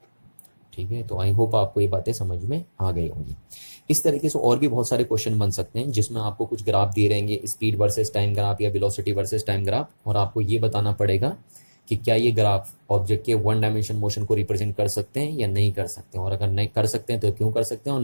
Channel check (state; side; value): inverted; both; correlation -1.00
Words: ठीक है। तो आई होप आपको ये बातें समझ में आ गई होंगी। इस तरीके से और भी बहुत सारे क्वेश्चन बन सकते हैं जिसमें आपको कुछ ग्राफ दिए रहेंगे, स्पीड वर्सेस टाइम ग्राफ या वेलोसिटी वर्सेस टाइम ग्राफ, और आपको ये बताना पड़ेगा कि क्या ये ग्राफ ऑब्जेक्ट के वन डायमेंशन मोशन को रिप्रेजेंट कर सकते हैं या नहीं कर सकते हैं, और अगर नहीं कर सकते हैं तो क्यों कर सकते हैं, और